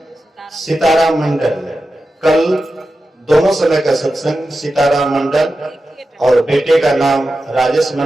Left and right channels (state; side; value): normal; both; correlation 0.92